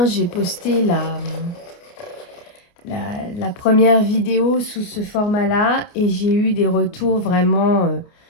j'ai posté la première vidéo sous ce format-là et j'ai eu des retours vraiment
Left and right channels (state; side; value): late; right; 29 ms